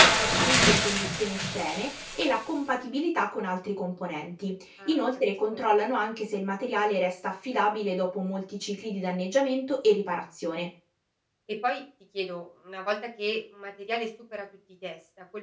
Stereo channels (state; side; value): identical; both; correlation 1.00